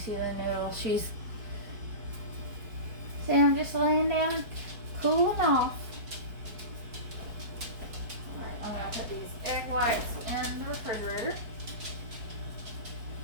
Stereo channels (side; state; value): left; late; 4.6 ms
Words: the noodle? She's... See, I'm just laying down, cooling off. Alright, I'm going to put these egg whites in the refrigerator.